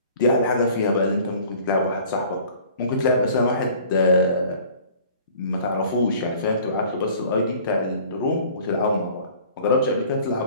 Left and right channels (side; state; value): both; inverted; correlation -0.50